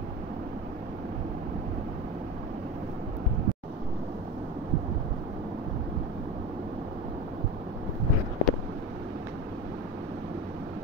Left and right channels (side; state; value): both; normal; correlation 0.28